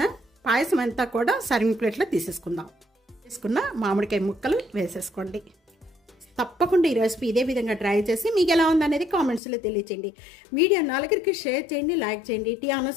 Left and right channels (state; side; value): drops out; right; at 9.4 s